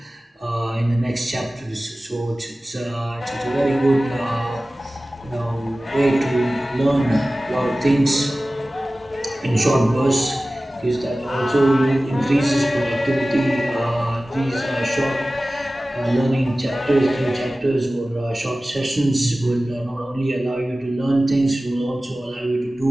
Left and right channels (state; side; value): normal; both; correlation 0.96